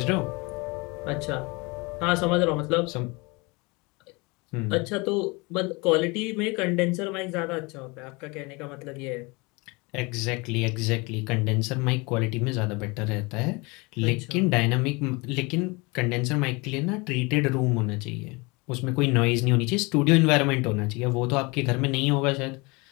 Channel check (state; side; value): quieter; right; 26.7 dB